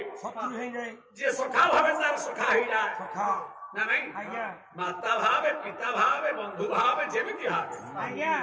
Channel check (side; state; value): both; identical; correlation 1.00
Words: ଶତ୍ରୁ ହେଇଯାଏ ଯିଏ ସଖା ଭାବେ ତାର ସଖା ହେଇଯାଏ ସଖା ନା ନାଇଁ ଆଜ୍ଞା ମାତା ଭାବେ ପିତା ଭାବେ ବନ୍ଧୁ ଭାବେ ଯେମିତି ଭାବେ ଆଜ୍ଞା